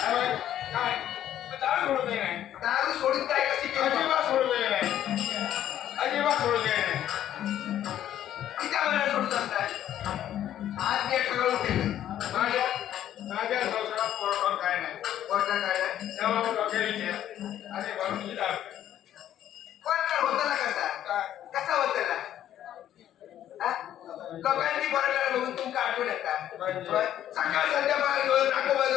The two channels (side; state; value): right; quieter; 11.5 dB